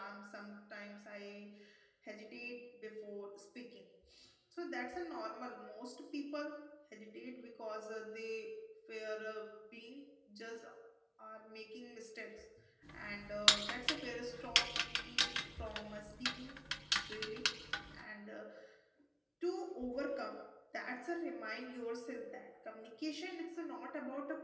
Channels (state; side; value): identical; both; correlation 1.00